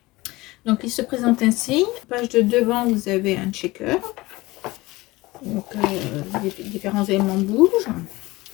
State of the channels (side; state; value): right; quieter; 20.6 dB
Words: Donc il se présente ainsi. Page de devant, vous avez un checker. Donc les différents éléments bougent.